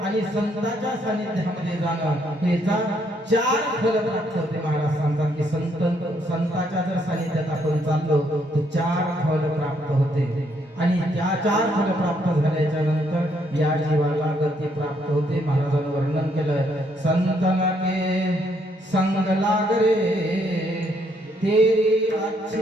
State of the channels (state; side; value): normal; both; correlation 0.72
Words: आणि संतांच्या सानिध्यामध्ये जाणं याचा 4 फल प्राप्त होते. महाराज सांगतात की संतांच्या जर सानिध्यात आपण चाललो तर 4 फल प्राप्त होते आणि त्या 4 फल प्राप्त झाल्याच्या नंतर या जीवाला गती प्राप्त होते. महाराजांनी वर्णन केलं, संतन के संग लाग रे तेरी